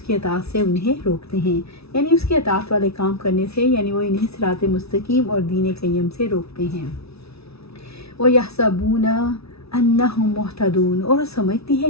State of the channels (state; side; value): late; right; 0.79 ms